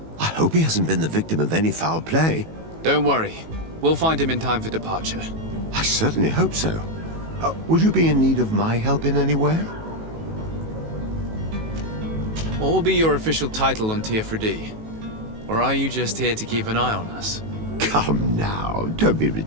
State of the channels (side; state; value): left; late; 18 ms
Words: I hope he hasn't been the victim of any foul play. Don't worry. We'll find him in time for departure. I certainly hope so. Would you be in need of my help in any way? What will be your official title on Teofredi? Or are you just here to keep an eye on us? Come now, don't be